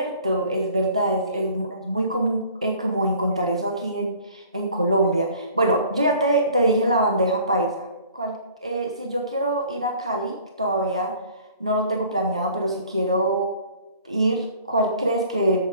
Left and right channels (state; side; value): inverted; both; correlation -0.51